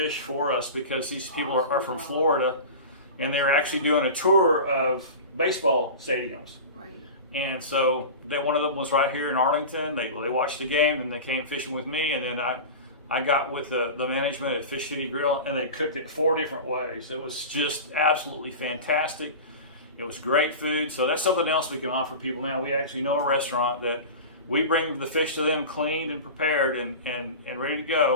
for us, because these people are from Florida, and they're actually doing a tour of baseball stadiums. Right. And so one of them was right here in Arlington. They watched the game, and they came fishing with me, and then I got with the management at Fish City Grill, and they cooked it 4 different ways. It was just absolutely fantastic. It was great food. So that's something else we can offer people now. We actually know a restaurant that we bring the fish to them cleaned and prepared and ready to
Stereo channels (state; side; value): inverted; both; correlation -0.31